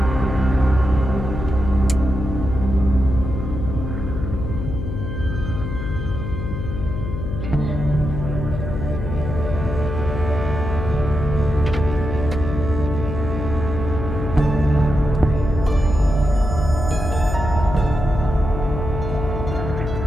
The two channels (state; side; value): noise; left; hum, 5 dB below the sound